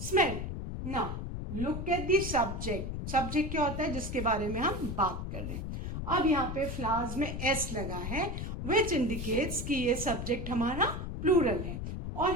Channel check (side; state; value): left; noise; rumble, 5 dB below the sound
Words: smell. Now look at the subject. Subject क्या होता है? जिसके बारे में हम बात कर रहे हैं। अब यहाँ पे फ्लावर्स में एस लगा है, विच इंडिकेट्स कि ये सब्जेक्ट हमारा प्लूरल है, और